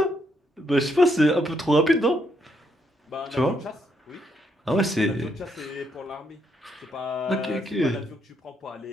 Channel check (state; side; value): normal; both; correlation 0.76